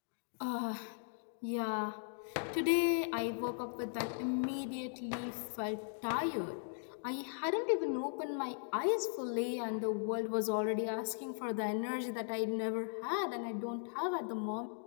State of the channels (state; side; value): silent; right; digital silence